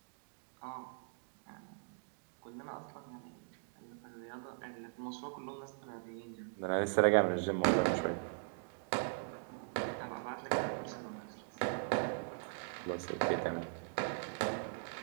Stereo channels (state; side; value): silent; left; digital silence